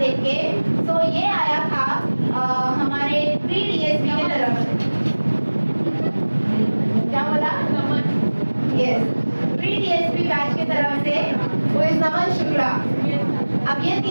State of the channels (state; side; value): inverted; both; correlation -1.00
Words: के। सो ये आया था हमारे प्री डीएसपी की तरफ से। क्या बोला? यस, प्री डीएसपी बैच की तरफ से वो इस नमन शुक्ला। अब ये